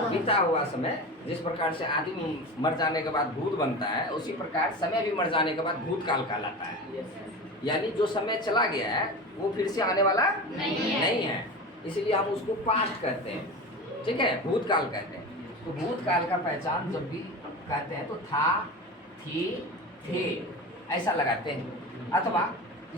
हुआ समय। जिस प्रकार से आदमी मर जाने के बाद भूत बनता है, उसी प्रकार समय भी मर जाने के बाद भूतकाल कहलाता है। यानी जो समय चला गया है वो फिर से आने वाला नहीं है, इसलिए हम उसको पास्ट कहते हैं, ठीक है, भूतकाल कहते हैं। तो भूतकाल का पहचान जब भी कहते हैं तो था, थी, थे ऐसा लगाते हैं, अथवा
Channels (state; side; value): normal; both; correlation 0.29